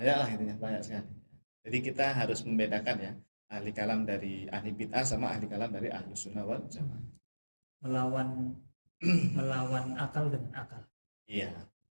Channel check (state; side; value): inverted; both; correlation -1.00